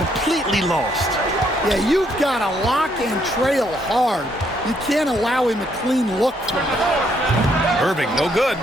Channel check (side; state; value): both; normal; correlation 0.71